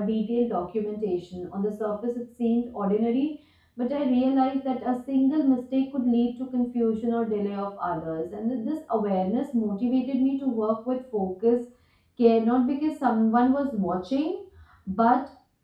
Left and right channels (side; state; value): both; identical; correlation 1.00